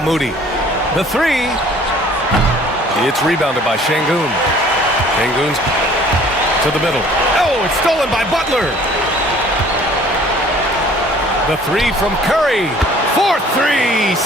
The 3. It's rebounded by Şengün. Şengün's to the middle. Oh, it's stolen by Butler. The 3 from Curry. 4th 3,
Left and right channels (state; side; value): normal; both; correlation 0.53